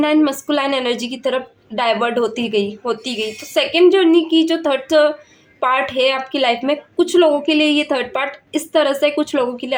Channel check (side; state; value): both; identical; correlation 1.00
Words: मस्कुलाइन एनर्जी की तरफ डाइवर्ट होती गई। तो सेकेंड जर्नी की जो थर्ड पार्ट है आपकी लाइफ में, कुछ लोगों के लिए ये थर्ड पार्ट इस तरह से, कुछ लोगों के